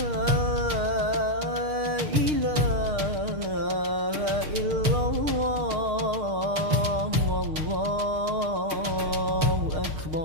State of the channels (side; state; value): left; late; 6.5 ms